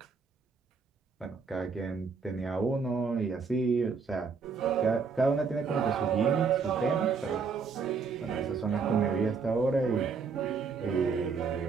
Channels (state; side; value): quieter; left; 5.3 dB